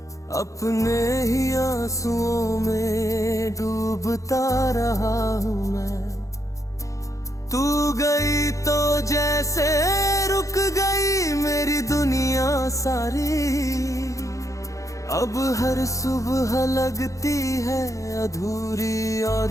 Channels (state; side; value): late; right; 0.16 ms